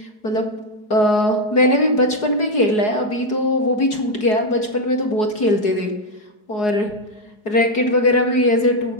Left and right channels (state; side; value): late; right; 4.8 ms